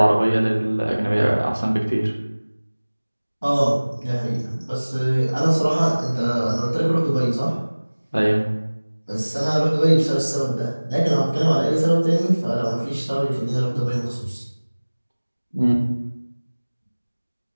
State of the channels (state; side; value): inverted; both; correlation -1.00